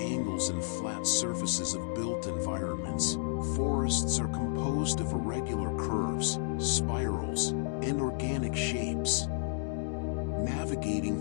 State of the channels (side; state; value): right; silent; digital silence